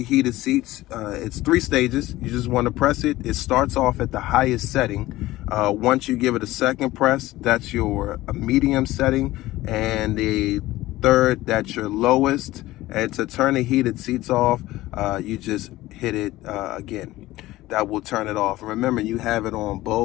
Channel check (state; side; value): quieter; right; 17.1 dB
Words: heated seats, it's 3 stages. You just want to press it. It starts off at the highest setting. Once you give it a second press, that's your medium setting, and the third, that's your lowest. And to turn the heated seats off, you just hit it again. That will turn it off. Remember, you have it on